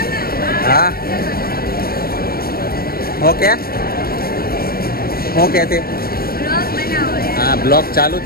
હા ઓકે ઓકે. તે હા, બ્લોગ ચાલુ જ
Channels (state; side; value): late; right; 0.44 ms